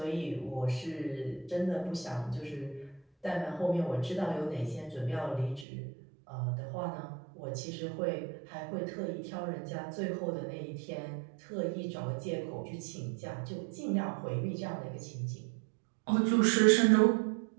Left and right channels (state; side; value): drops out; left; at 5.7 s